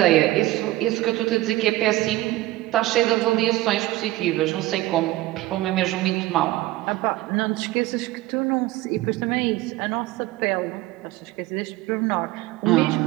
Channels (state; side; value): quieter; left; 17.4 dB